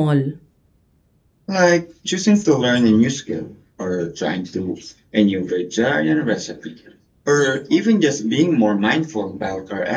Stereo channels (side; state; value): both; identical; correlation 1.00